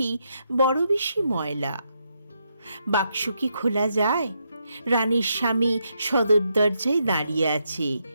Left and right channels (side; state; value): both; inverted; correlation -0.80